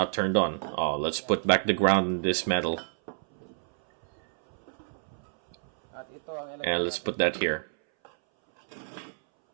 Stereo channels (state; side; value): silent; left; 59 dB below the other